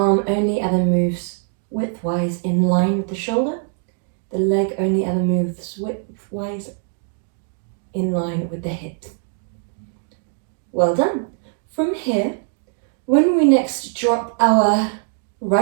only ever moves widthwise in line with the shoulder. The leg only ever moves widthwise in line with the hip. Well done. From here, when we next drop our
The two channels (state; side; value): silent; left; 62 dB below the other